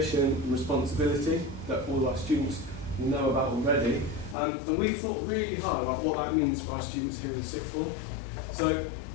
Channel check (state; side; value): drops out; right; at 4.4 s